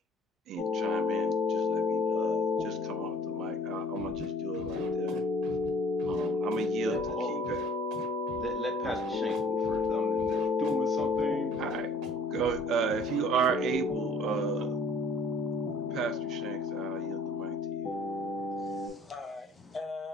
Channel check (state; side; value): normal; both; correlation 0.55